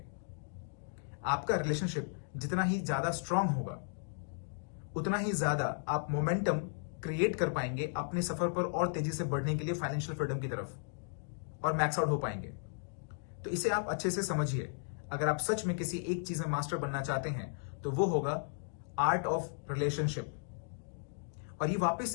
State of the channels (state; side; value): silent; right; digital silence